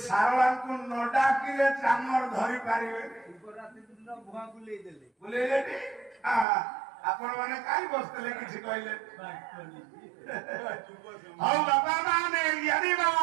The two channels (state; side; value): drops out; left; at 6.5 s